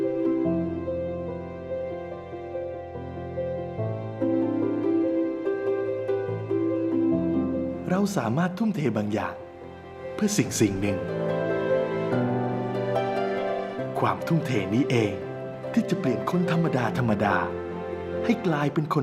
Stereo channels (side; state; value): both; identical; correlation 1.00